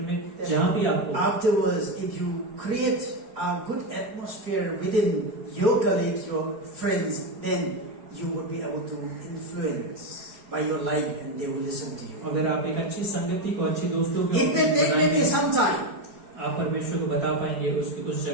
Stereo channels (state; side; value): late; left; 4.8 ms